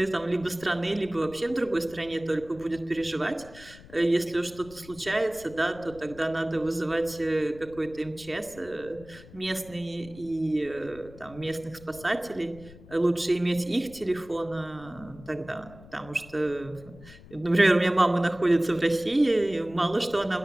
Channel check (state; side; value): noise; left; rumble, 20 dB below the sound